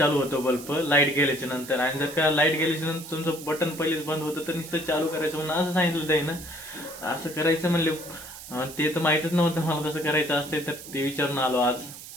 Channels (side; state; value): right; noise; hiss, 14 dB below the sound